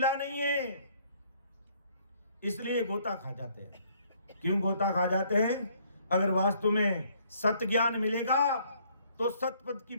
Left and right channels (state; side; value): inverted; both; correlation -0.64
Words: नहीं है, इसलिए गोता खा जाते हैं। क्यों गोता खा जाते हैं? अगर वास्तव में सत्य ज्ञान मिलेगा तो सतपद की